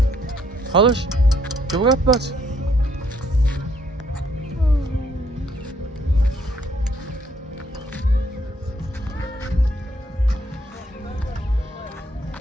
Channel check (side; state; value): both; normal; correlation 0.68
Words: Halış? Que vou para?